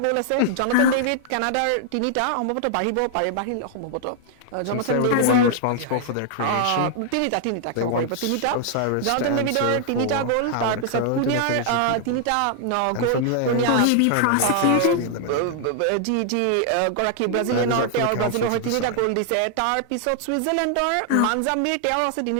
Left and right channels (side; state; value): both; different; correlation 0.00